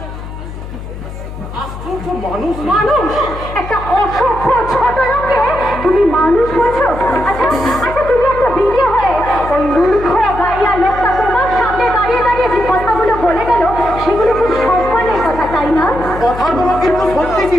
আশ্চর্য মানুষ। মানুষ, একটা অসভ্য ছোট লোককে তুমি মানুষ বলছো? আচ্ছা আচ্ছা, তুমি একটা বিয়ে হয়ে ওই মূর্খ গাইয়া লোকটা তোমার সামনে দাঁড়িয়ে দাঁড়িয়ে যে কথাগুলো বলে গেল, সেগুলো খুব সম্মানের কথা, তাই না? কথাগুলো কিন্তু সত্যি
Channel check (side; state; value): left; noise; hum, 10 dB below the sound